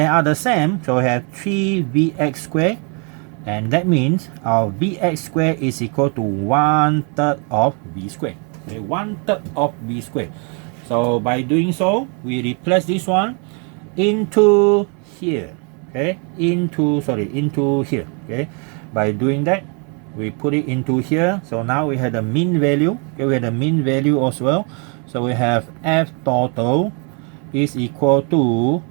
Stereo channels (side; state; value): left; quieter; 36.7 dB